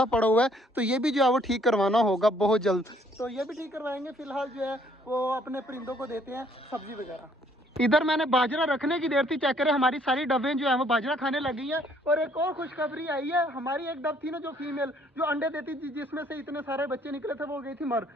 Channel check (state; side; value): normal; both; correlation 0.64